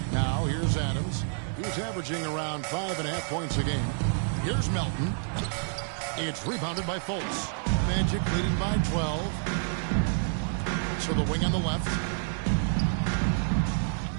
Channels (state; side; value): silent; left; 59 dB below the other